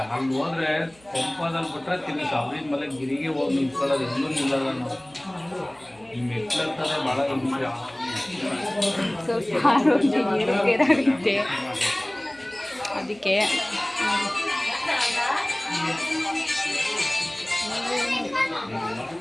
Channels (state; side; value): noise; right; hum, 29 dB below the sound